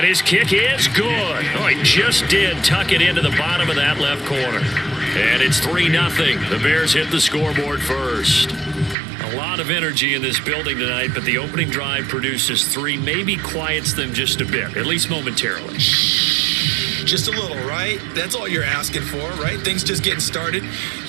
his kick is good. Oh, he just did tuck it into the bottom of that left corner. And it's 3-0. The Bears hit the scoreboard first. A lot of energy in this building tonight, but the opening drive produces 3, maybe quiets them just a bit, at least momentarily. Just a little, right? That's all you're asking for, right? Things just getting started.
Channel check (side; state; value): left; drops out; at 9.0 s